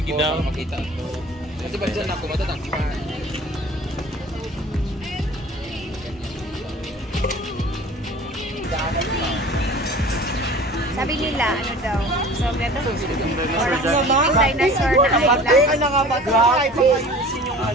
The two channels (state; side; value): normal; both; correlation 0.43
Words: daw makita. Kasi ba diyan ako matatangkihan. Sabi nila, ano daw? So, ganda. Dinosaur na island.